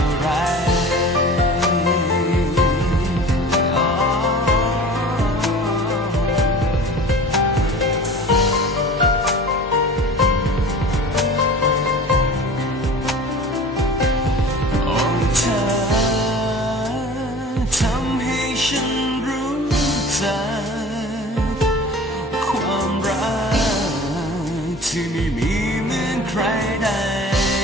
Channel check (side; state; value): both; normal; correlation 0.40